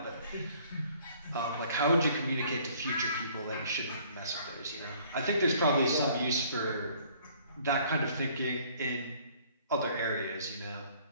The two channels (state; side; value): inverted; both; correlation -0.58